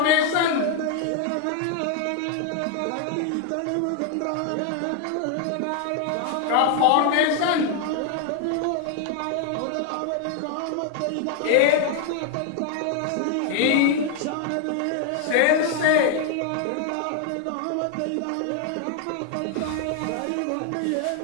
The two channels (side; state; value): both; different; correlation 0.00